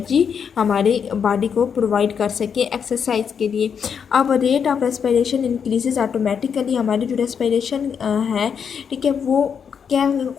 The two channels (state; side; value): quieter; right; 7.1 dB